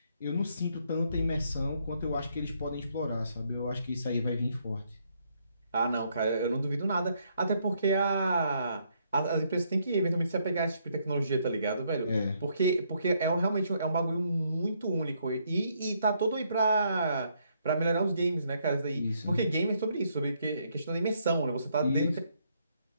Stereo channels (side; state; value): both; inverted; correlation -0.72